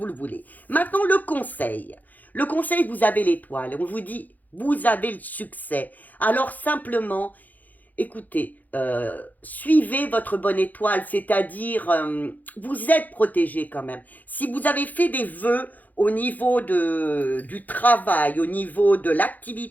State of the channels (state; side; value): late; right; 0.082 ms